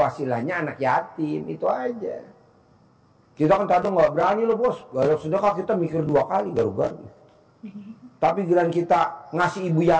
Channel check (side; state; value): both; identical; correlation 1.00